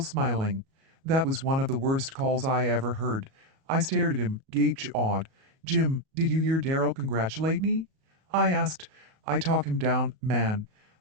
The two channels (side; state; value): left; late; 37 ms